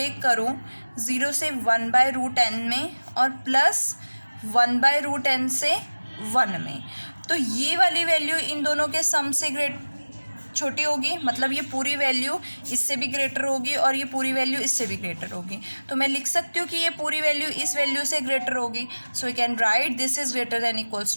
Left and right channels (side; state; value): both; inverted; correlation -1.00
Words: करूं 0 से 1/√n में और प्लस 1/√n से 1 में, तो ये वाली वैल्यू इन दोनों के सम से छोटी होगी, मतलब ये पूरी वैल्यू इससे भी ग्रेटर होगी और ये पूरी वैल्यू इससे भी ग्रेटर होगी. तो मैं लिख सकती हूँ कि ये पूरी वैल्यू इस वैल्यू से ग्रेटर होगी. So we can write this is greater than equals